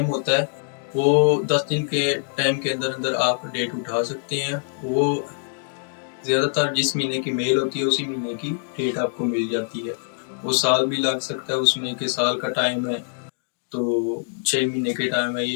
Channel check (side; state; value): right; silent; digital silence